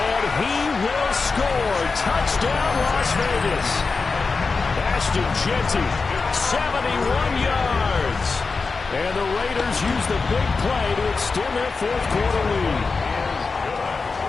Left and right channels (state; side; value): quieter; right; 4.4 dB